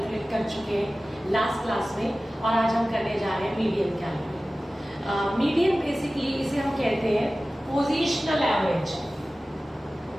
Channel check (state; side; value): normal; both; correlation 0.96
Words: कर चुके हैं लास्ट क्लास में, और आज हम करने जा रहे हैं मीडियन कैलकुलेट। मीडियन बेसिकली इसे हम कहते हैं पोजिशनल एवरेज।